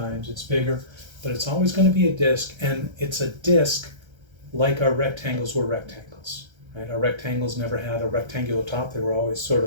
it's bigger, but it's always going to be a disc, and it's a disc like our rectangles were rectangles, right? Our rectangles never had a rectangular top. They were always sort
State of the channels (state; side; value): late; left; 1.3 ms